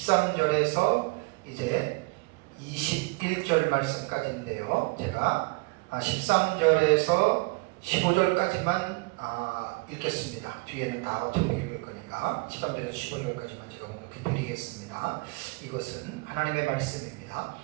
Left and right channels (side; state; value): left; quieter; 27.9 dB